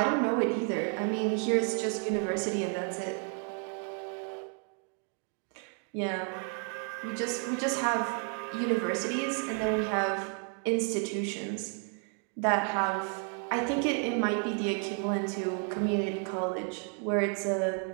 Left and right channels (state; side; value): quieter; left; 37.4 dB